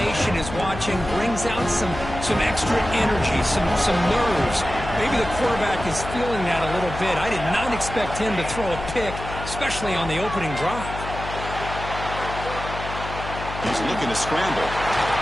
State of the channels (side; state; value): left; noise; hum, 9 dB below the sound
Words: is watching, brings out some extra energy, some nerves. Maybe the quarterback is feeling that a little bit. I did not expect him to throw a pick, especially on the opening drive. He's looking to scramble.